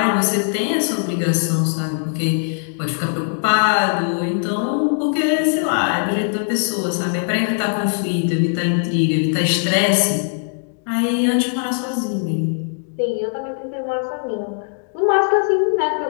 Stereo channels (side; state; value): right; silent; digital silence